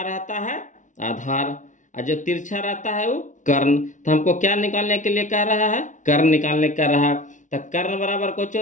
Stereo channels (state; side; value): late; right; 0.37 ms